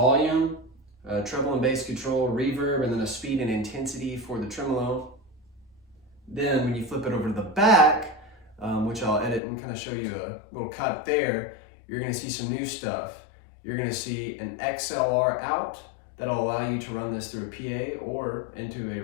treble and bass control, reverb, and then a speed and intensity for the tremolo. Then when you flip it over to the back, which I'll edit and kind of show you a little cut there, you're going to see some new stuff. You're going to see an XLR out that'll allow you to run this through a PA or into a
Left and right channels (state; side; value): drops out; right; at 9.4 s